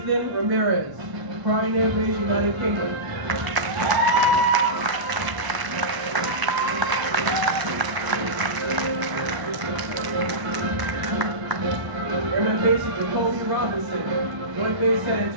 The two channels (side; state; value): left; late; 1.0 ms